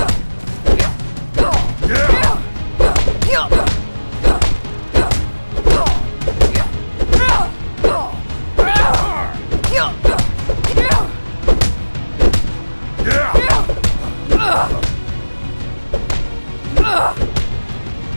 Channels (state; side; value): inverted; both; correlation -1.00